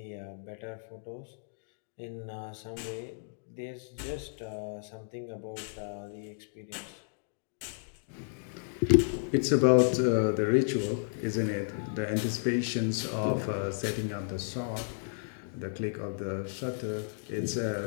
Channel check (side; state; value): right; silent; digital silence